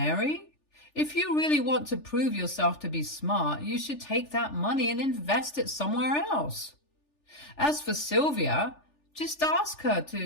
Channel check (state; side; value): late; right; 3.4 ms